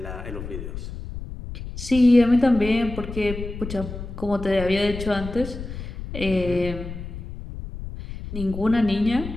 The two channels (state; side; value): noise; left; rumble, 9 dB below the sound